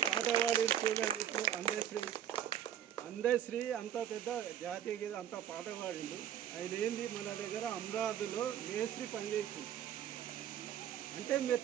పాట పాడి చూడండి. ఇప్పుడు అందశ్రీ అంత పెద్ద జాతీయ గీత అంత పాట పాడిండు. ఆయన ఏంది మన దగ్గర అమరావతిలో మేస్త్రి పనిచేసింది. అంటే మీరు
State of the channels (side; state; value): left; quieter; 10.4 dB